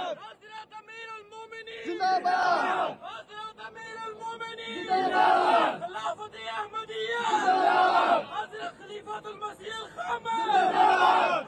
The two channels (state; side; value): identical; both; correlation 1.00